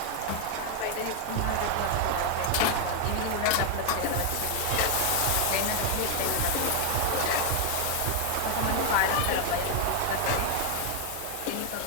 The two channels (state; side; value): different; both; correlation 0.00